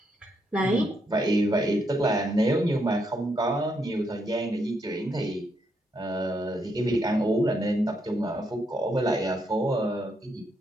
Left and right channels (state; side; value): normal; both; correlation 0.77